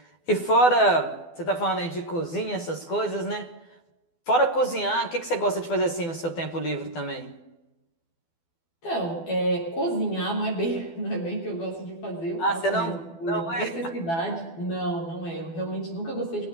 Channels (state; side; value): late; right; 12 ms